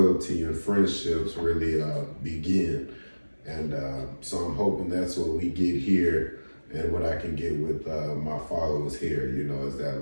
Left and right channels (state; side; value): inverted; both; correlation -1.00